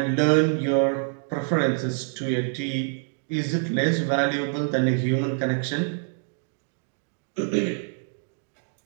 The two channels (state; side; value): silent; left; digital silence